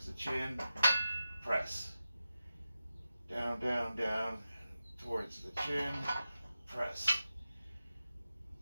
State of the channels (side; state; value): both; inverted; correlation -0.93